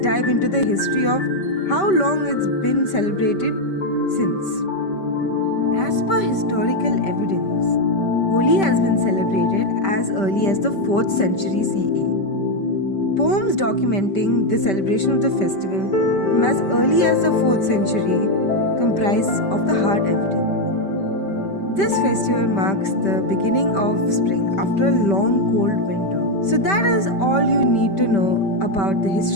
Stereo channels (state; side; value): late; right; 5.1 ms